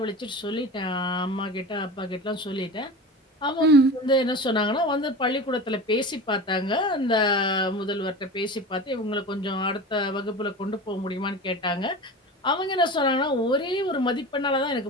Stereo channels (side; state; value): both; normal; correlation 0.32